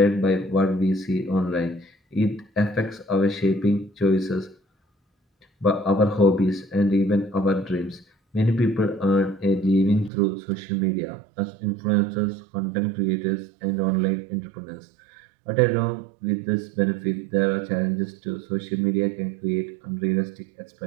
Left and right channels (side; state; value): left; drops out; at 10.1 s